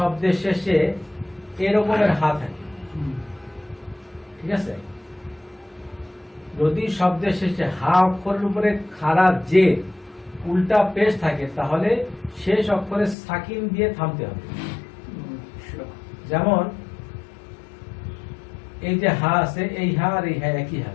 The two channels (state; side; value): drops out; right; at 13.2 s